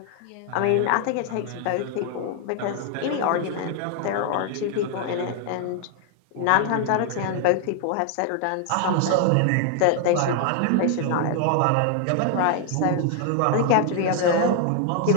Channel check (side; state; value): both; different; correlation 0.00